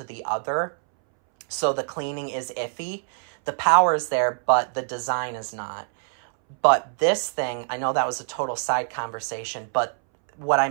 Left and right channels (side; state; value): left; silent; 62 dB below the other